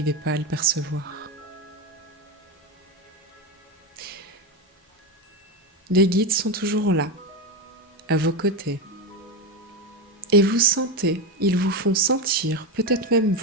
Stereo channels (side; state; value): both; normal; correlation 0.14